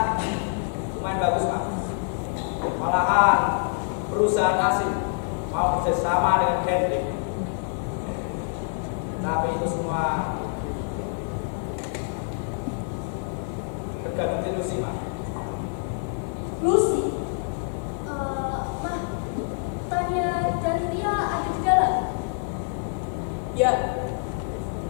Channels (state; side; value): silent; right; digital silence